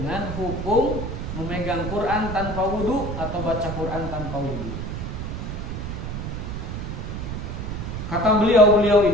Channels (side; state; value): right; noise; rumble, 5 dB below the sound